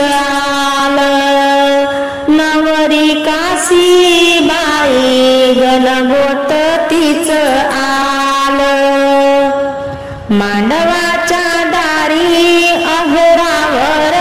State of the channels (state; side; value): identical; both; correlation 1.00